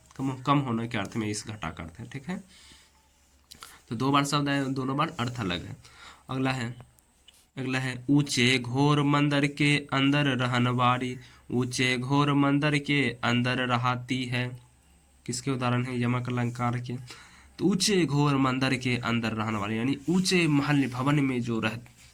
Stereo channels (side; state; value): both; identical; correlation 1.00